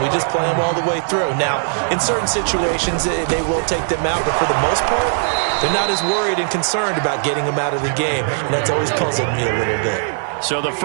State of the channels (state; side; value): silent; left; 61 dB below the other